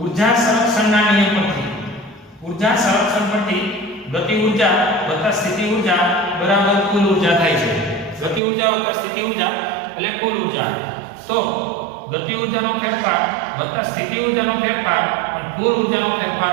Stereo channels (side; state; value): left; drops out; at 8.4 s